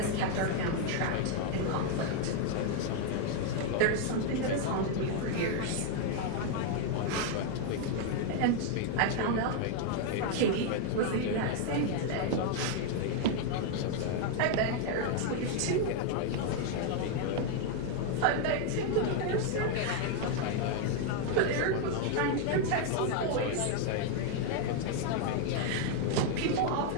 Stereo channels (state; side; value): different; both; correlation 0.00